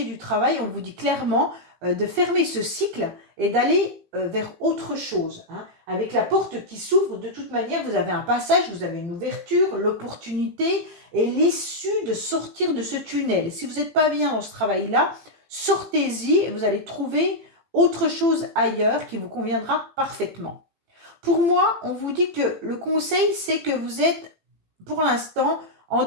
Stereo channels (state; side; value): late; left; 18 ms